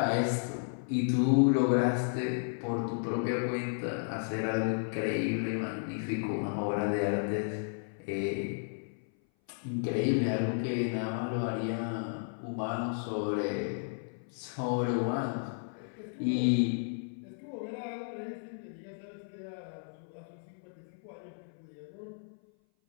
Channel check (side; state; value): right; silent; 56 dB below the other